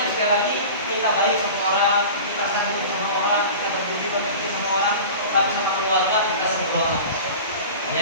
sekali lagi kita baik sama orang, kita sambut sama orang, kita berbudi pekerti sama orang, tapi sama keluarga kita sembrono.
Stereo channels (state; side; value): inverted; both; correlation -0.36